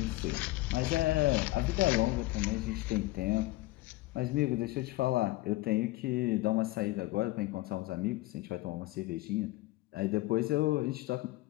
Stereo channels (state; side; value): quieter; right; 19.0 dB